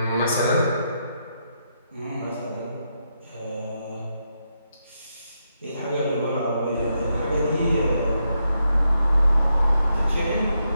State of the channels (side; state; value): both; inverted; correlation -0.82